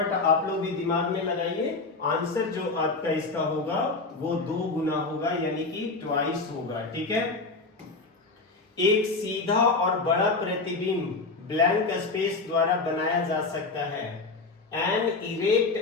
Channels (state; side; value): quieter; right; 3.7 dB